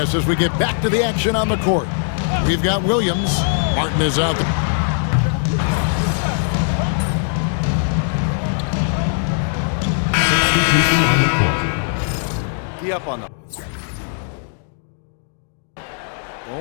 as we get back to the action on the court. We've got Williams. Martin is out. Be up on them.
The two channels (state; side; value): silent; right; digital silence